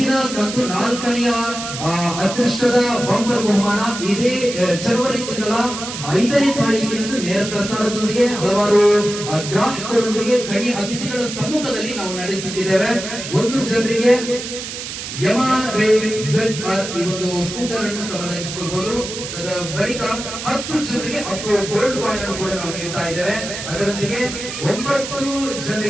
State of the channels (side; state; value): right; noise; hiss, 8 dB below the sound